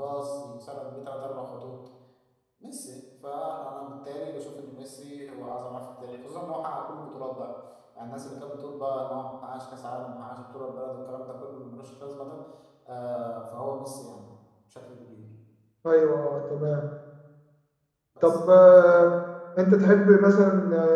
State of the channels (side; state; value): both; identical; correlation 1.00